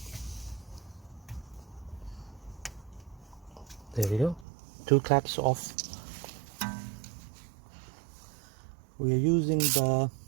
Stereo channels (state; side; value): drops out; left; at 4.5 s